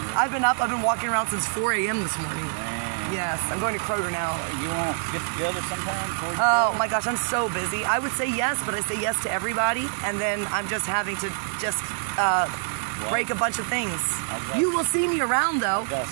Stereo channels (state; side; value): silent; left; digital silence